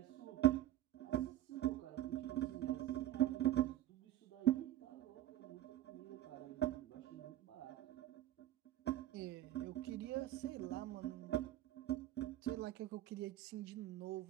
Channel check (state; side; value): quieter; left; 13.2 dB